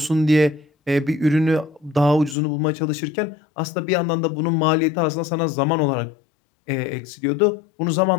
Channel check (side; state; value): right; drops out; at 2.4 s